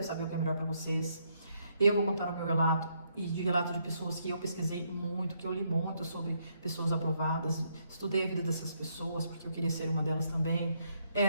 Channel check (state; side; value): inverted; both; correlation -0.74